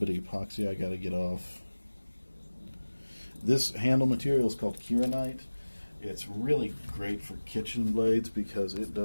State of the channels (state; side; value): inverted; both; correlation -1.00